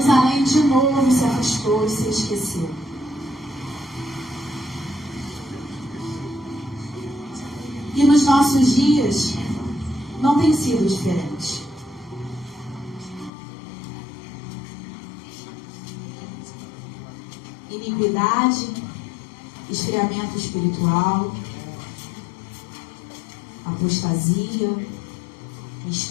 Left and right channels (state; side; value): drops out; right; at 13.3 s